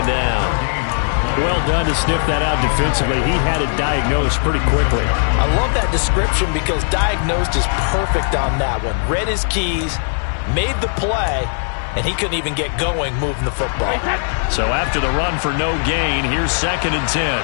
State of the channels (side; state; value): right; silent; digital silence